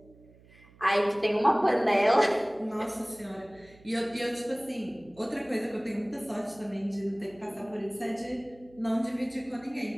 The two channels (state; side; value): noise; right; hum, 25 dB below the sound